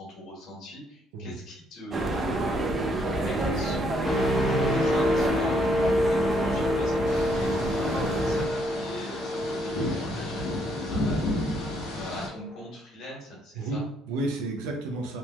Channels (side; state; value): both; normal; correlation 0.70